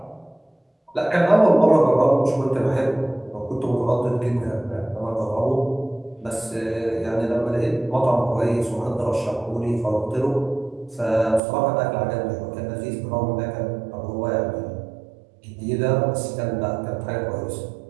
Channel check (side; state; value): left; drops out; at 11.4 s